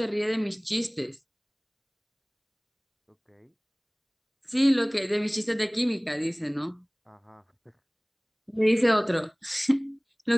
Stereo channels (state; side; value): identical; both; correlation 1.00